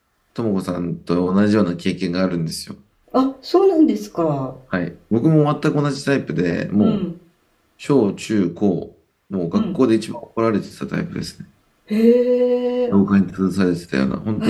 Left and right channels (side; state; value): both; identical; correlation 1.00